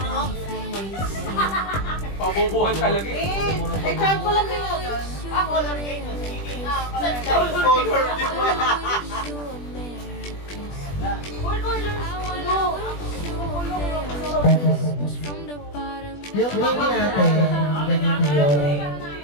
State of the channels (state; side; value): late; right; 20 ms